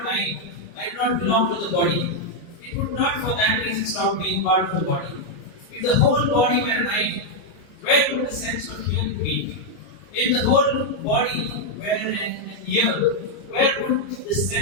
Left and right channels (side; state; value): right; late; 29 ms